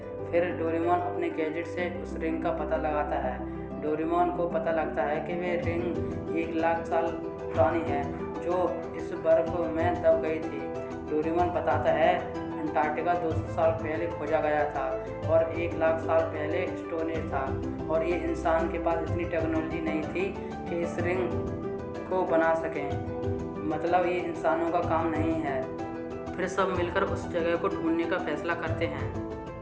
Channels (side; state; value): both; identical; correlation 1.00